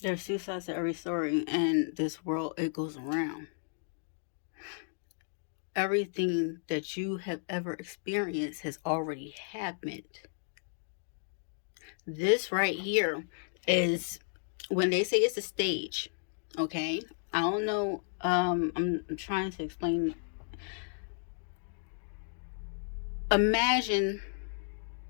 There's two sides to every story, and this world, it goes around. Everything that you have ever experienced has already happened. This right here is when they say it's a stage, okay? I don't know. I'm trying to explain. Imagine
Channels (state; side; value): silent; right; digital silence